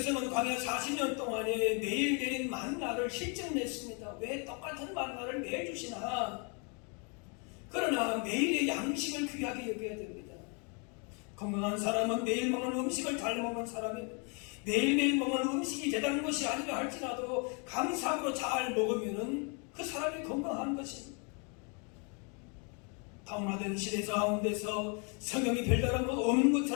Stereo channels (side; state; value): right; quieter; 35.5 dB